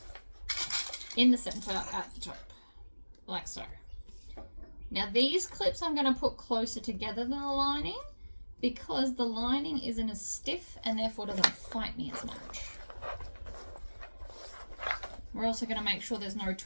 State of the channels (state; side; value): inverted; both; correlation -1.00